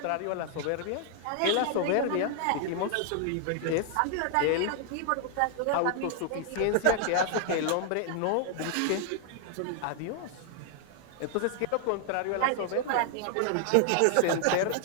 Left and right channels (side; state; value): both; different; correlation 0.00